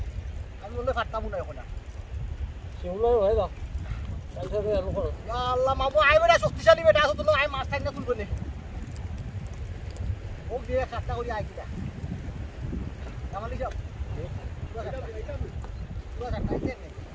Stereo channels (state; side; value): identical; both; correlation 1.00